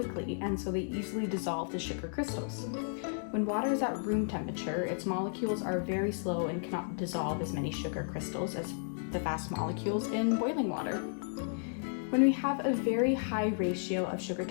and so they easily dissolve the sugar crystals. When water is at room temperature, its molecules are very slow and cannot dissolve as many sugar crystals as the fast molecules in boiling water. When we have a very high ratio of sugar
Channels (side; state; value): right; silent; digital silence